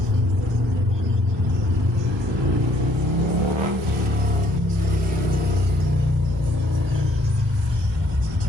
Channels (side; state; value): both; normal; correlation 0.64